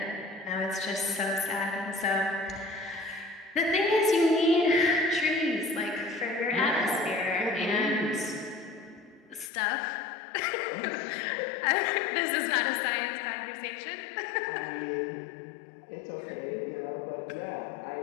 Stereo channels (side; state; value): right; drops out; at 9.5 s